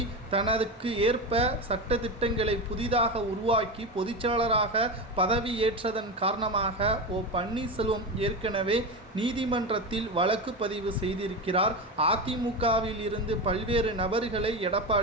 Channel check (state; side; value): normal; both; correlation 0.20